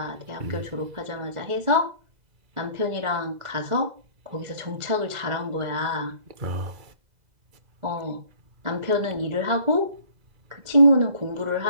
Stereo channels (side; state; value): left; late; 2.0 ms